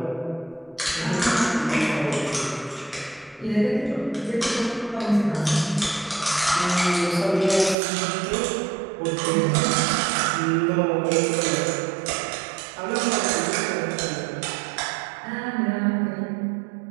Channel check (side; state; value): left; drops out; at 7.8 s